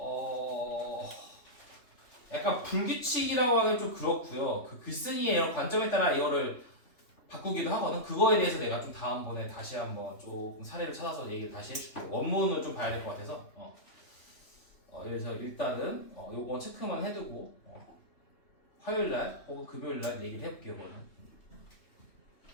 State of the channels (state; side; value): late; right; 3.1 ms